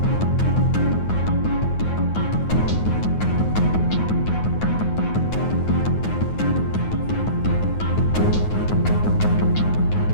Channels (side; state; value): right; late; 9.4 ms